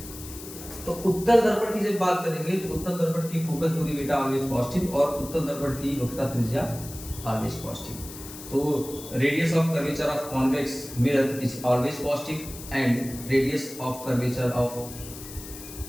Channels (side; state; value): left; noise; hiss, 13 dB below the sound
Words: तो उत्तल दर्पण की जब बात करेंगे तो उत्तल दर्पण की फोकस दूरी बेटा ऑलवेज पॉजिटिव, और उत्तल दर्पण की वक्रता त्रिज्या ऑलवेज पॉजिटिव। तो radius of curvature of convex mirror is always positive, and radius of curvature of